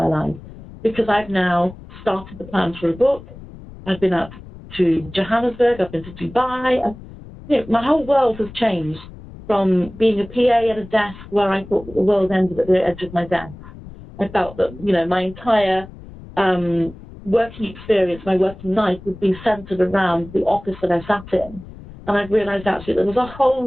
life, because I've now started the plans for a book. I've been out to Johannesburg. I've been to Dubai. You know, my whole world has changed from being a PA at a desk where I thought that the world ended at the edge of my desk. I felt that, you know, my entire working experience, my working life would be centered around the office that I sat in. And I've realized actually there was a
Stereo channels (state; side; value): noise; left; rumble, 17 dB below the sound